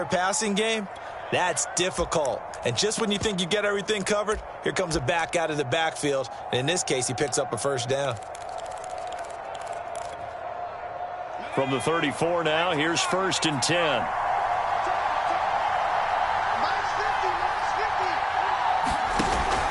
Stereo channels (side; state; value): both; identical; correlation 1.00